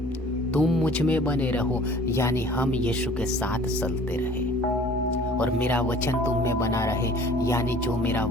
तुम मुझ में बने रहो यानी हम यीशु के साथ चलते रहे, और मेरा वचन तुम में बना रहे यानी जो मेरा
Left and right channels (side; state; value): both; normal; correlation 0.50